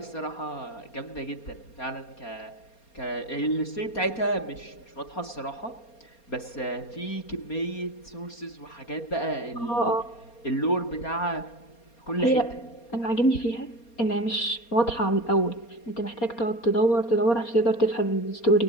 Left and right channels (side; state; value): right; late; 4.3 ms